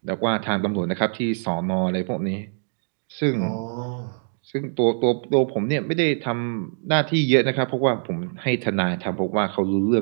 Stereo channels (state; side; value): silent; left; digital silence